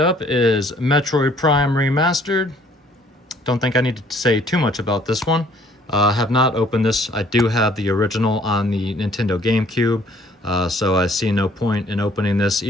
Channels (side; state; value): both; normal; correlation 0.60